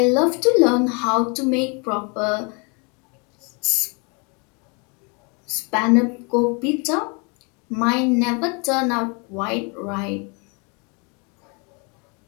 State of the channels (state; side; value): quieter; right; 32.9 dB